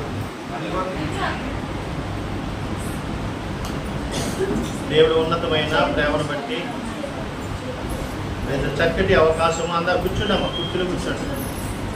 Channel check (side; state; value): both; identical; correlation 1.00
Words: దేవుడు ఉన్నతమైన ప్రేమను బట్టి చక్కటి అవకాశం. అందరు కూర్చుండమ్మా, కుర్చీలో కూర్చోండి,